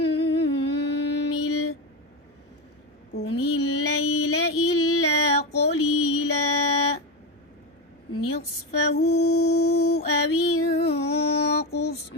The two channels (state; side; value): normal; both; correlation 0.16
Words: قم الليل إلا قليلا نصفه أو انقص